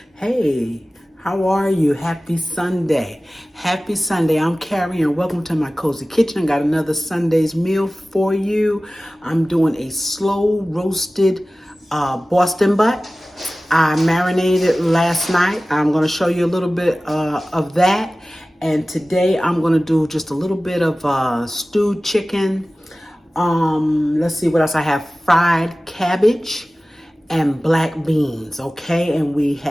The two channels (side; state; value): both; normal; correlation 0.97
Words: Hey, how are you? Happy Sunday. Happy Sunday. I'm Carrie and welcome to my cozy kitchen. Got another Sunday's meal for you. I'm doing a slow roasted Boston butt. I marinated last night. I'm going to show you a little bit of that. And today I'm going to do just a little bit of stewed chicken. Let's see what else I have. Fried cabbage and black beans, okay? And we